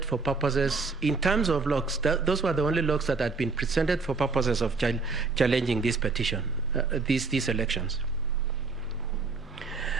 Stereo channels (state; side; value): quieter; left; 4.3 dB